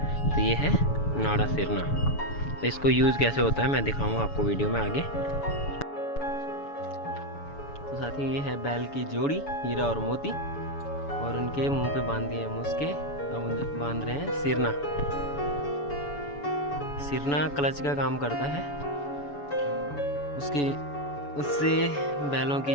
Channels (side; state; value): right; late; 7.0 ms